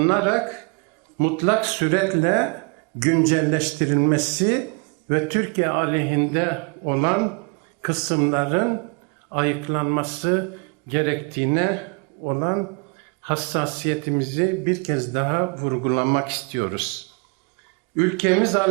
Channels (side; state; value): left; quieter; 34.7 dB